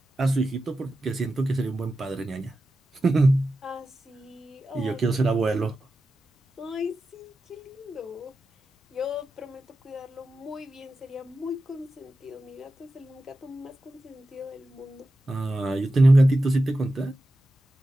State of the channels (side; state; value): both; normal; correlation 0.92